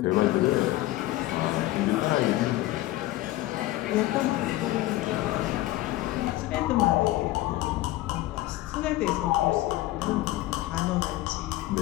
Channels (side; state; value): right; quieter; 16.7 dB